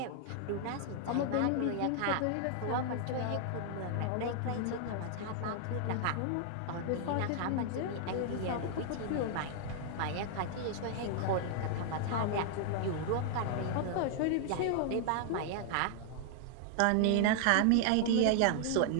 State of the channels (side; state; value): both; different; correlation 0.00